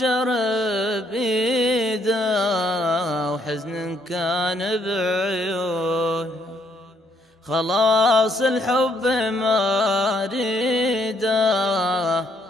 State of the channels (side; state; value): both; normal; correlation 0.71